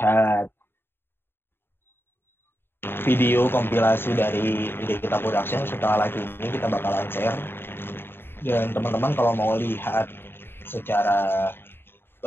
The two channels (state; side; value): late; right; 0.11 ms